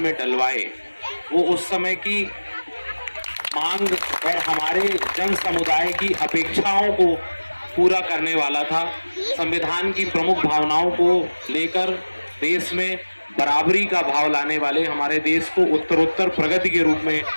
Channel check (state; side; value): inverted; both; correlation -1.00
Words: डलवाए, वो उस समय की मांग और हमारे जन समुदाय की अपेक्षाओं को पूरा करने वाला था। संविधान की प्रमुख भावनाओं को लेकर देश में बराबरी का भाव लाने वाले, हमारे देश को उत्तरोत्तर प्रगति के रूप में